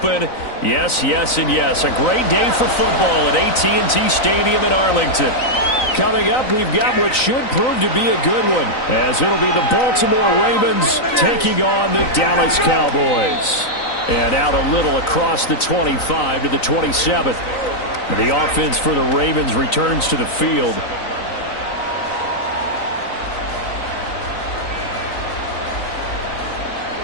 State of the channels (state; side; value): late; right; 3.9 ms